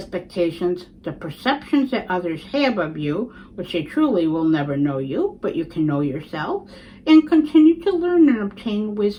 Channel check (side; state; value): both; identical; correlation 1.00